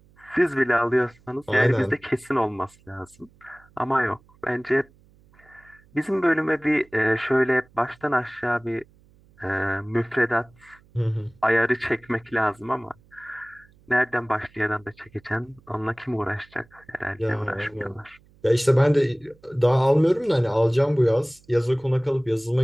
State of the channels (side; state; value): right; noise; hum, 29 dB below the sound